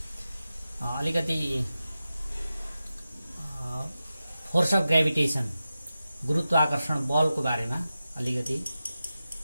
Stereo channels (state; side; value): inverted; both; correlation -0.93